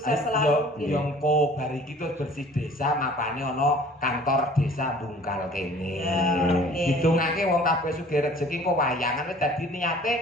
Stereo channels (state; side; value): normal; both; correlation 0.50